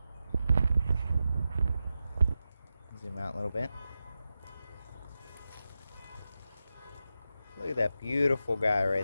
Zoom out a little bit. Look at that beautiful guy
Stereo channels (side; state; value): both; inverted; correlation -0.90